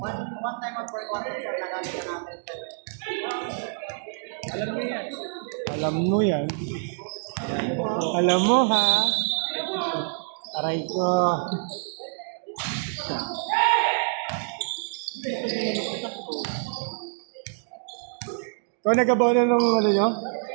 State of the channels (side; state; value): left; silent; digital silence